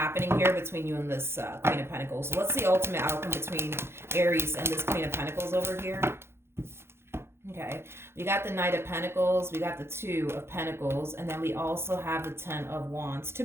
here between you and this Queen of Pentacles. So let's see ultimate outcome between Aries and this Queen of Pentacles over here. Okay, we got the Knight of Pentacles, we got the Two of Pentacles, and then we also have the Ten of Wands. To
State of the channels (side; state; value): left; late; 0.12 ms